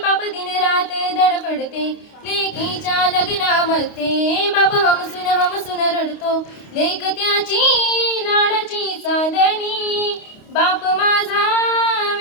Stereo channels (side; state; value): right; late; 29 ms